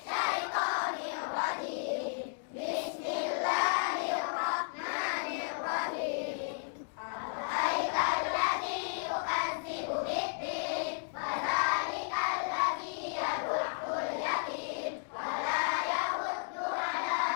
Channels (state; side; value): silent; right; digital silence